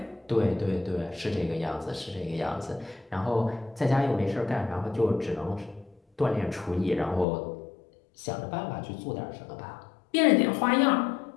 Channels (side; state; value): right; drops out; at 7.2 s